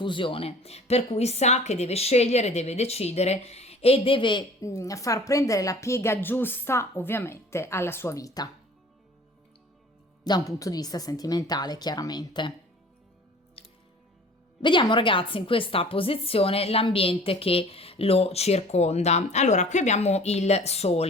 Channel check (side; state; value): both; normal; correlation 0.47